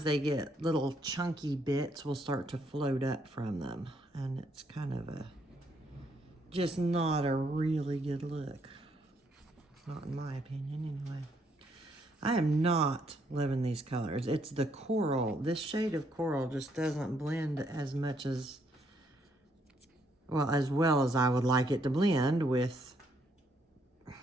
they get little chunky bits will start to float up from them. And it's kind of a, just not a really good look. Not in my opinion, anyway. I am not loving these colors. It's the coral. This shade of coral just doesn't blend as much as, well as I would like it to blend with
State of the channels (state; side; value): normal; both; correlation 0.72